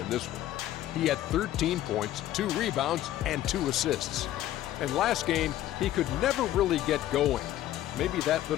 this one. He had 13 points, 2 rebounds, and 2 assists. And last game, he could never really get going. Maybe that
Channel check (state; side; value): quieter; right; 13.4 dB